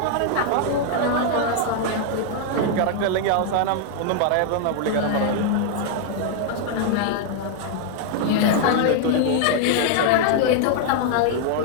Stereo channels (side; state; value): both; different; correlation 0.00